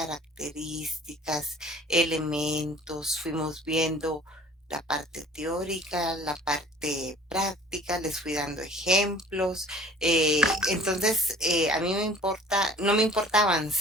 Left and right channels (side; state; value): both; normal; correlation 0.49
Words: elementos, fuimos viendo la parte teórica, la parte práctica, les fui dando ejemplos. Entonces, a mí no me importa